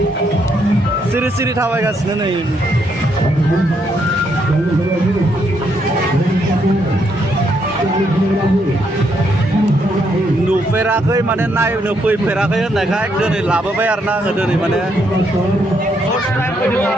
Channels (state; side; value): normal; both; correlation 0.75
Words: सिरि सिरि थाबायगासिनो नै। नुफेराखै माने नायनो फैफेराखै होननायखाय दिनै लाबोबाय आरोना आङो दिनै माने फार्स्ट टाइम फैदों